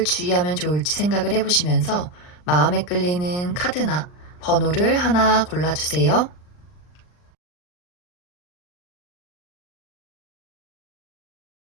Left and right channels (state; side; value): late; right; 39 ms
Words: 주의하면 좋을지 생각을 해보시면서 마음에 끌리는 카드나 번호를 하나 골라주세요.